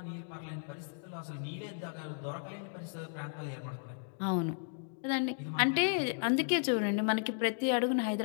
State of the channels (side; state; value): right; silent; digital silence